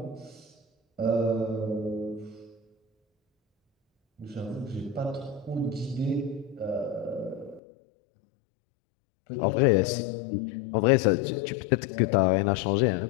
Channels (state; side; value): drops out; right; at 7.6 s